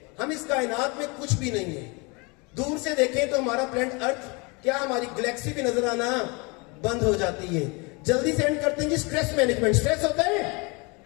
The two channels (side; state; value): right; quieter; 29.1 dB